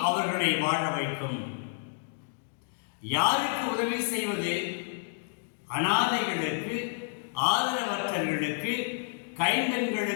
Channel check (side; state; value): right; silent; digital silence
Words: அவர்களை வாழ வைக்கும். யாருக்கு உதவி செய்வது? அனாதைகளுக்கு, ஆதரவற்றவர்களுக்கு,